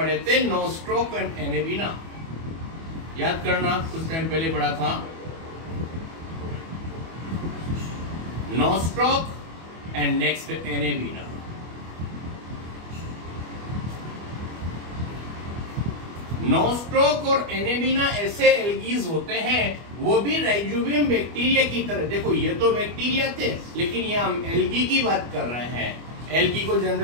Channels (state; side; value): late; left; 24 ms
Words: थे, नोस्ट्रोक एंड एनेबिना। याद करना, कुछ टाइम पहले पढ़ा था, नोस्ट्रोक एंड नेक्स्ट एनेबिना। नोस्ट्रोक और एनेबिना ऐसे एल्गीज होते हैं, वो भी राइजोबियम बैक्टीरिया की तरह। देखो ये तो बैक्टीरिया थे, लेकिन ये हम एल्गी की बात कर रहे हैं। एल्गी को